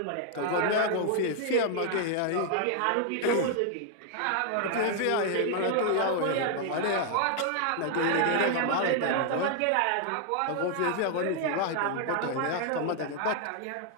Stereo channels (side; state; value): both; different; correlation 0.00